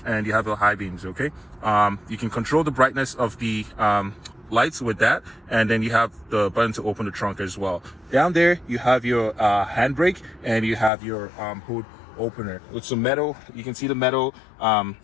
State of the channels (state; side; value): drops out; right; at 10.9 s